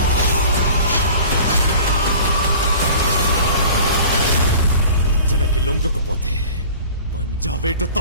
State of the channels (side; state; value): both; inverted; correlation -0.43